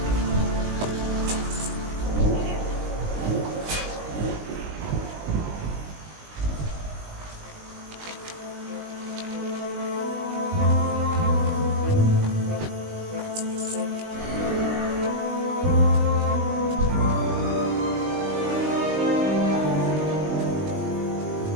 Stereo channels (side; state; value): left; late; 20 ms